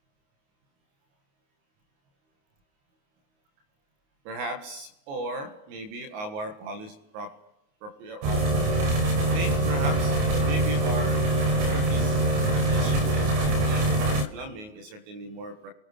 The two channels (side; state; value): left; late; 28 ms